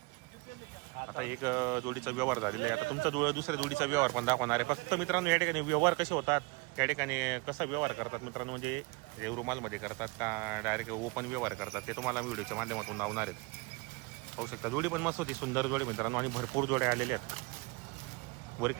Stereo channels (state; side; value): quieter; left; 26.9 dB